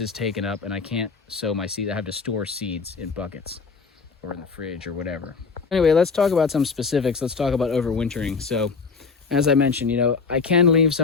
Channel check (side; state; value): right; quieter; 5.0 dB